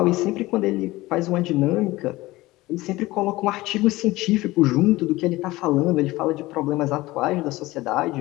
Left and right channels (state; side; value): quieter; right; 19.1 dB